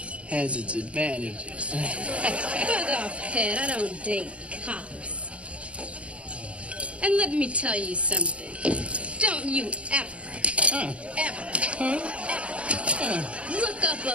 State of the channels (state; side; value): late; left; 0.061 ms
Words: has its advantages. Fuck off, Pet. I don't date cops. And let me tell you something. Don't you ever look up